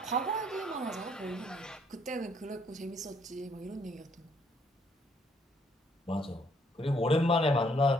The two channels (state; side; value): normal; both; correlation 0.67